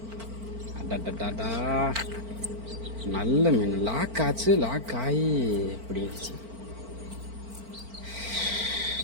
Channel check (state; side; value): late; left; 4.4 ms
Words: அடடடா, நல்ல மீன். லாக் ஆச்சு, லாக் ஆகி பிடிச்சு.